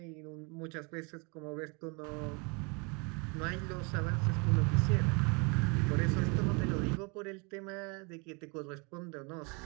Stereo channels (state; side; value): quieter; left; 31.7 dB